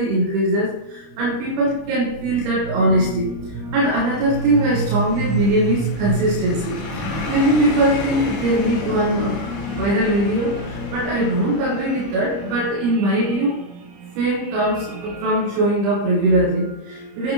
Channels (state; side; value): late; left; 30 ms